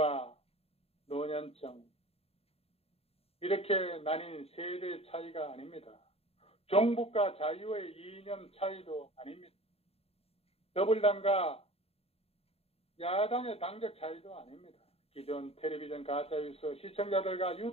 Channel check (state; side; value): late; right; 0.29 ms